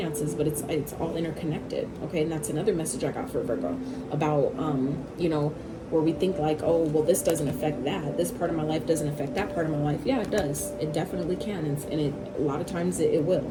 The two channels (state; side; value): identical; both; correlation 1.00